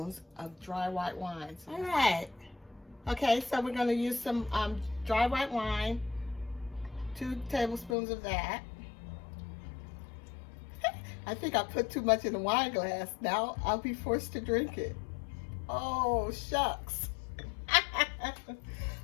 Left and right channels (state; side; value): drops out; right; at 8.0 s